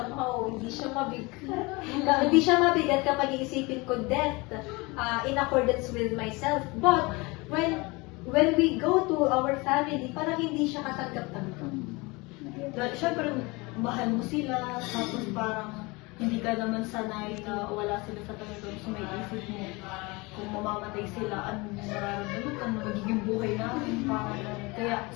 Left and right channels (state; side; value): quieter; right; 25.2 dB